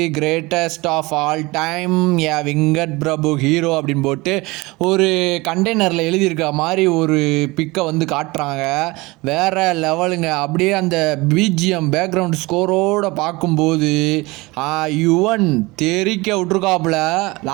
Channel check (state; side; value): quieter; left; 22.8 dB